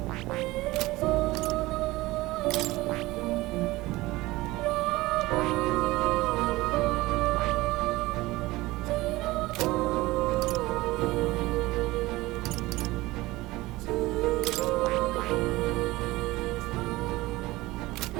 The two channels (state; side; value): quieter; left; 19.6 dB